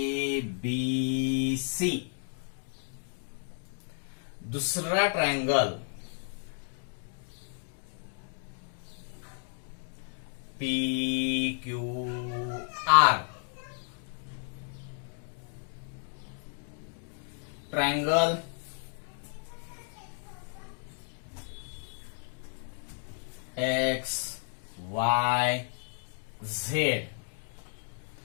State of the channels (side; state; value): right; silent; 56 dB below the other